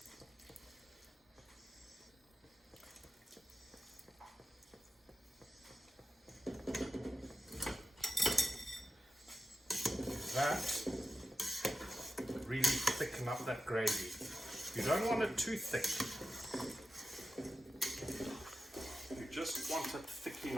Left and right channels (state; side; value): normal; both; correlation 0.91